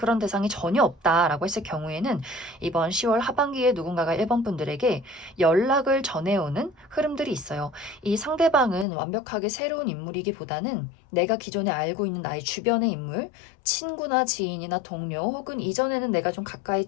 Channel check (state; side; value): drops out; right; at 8.8 s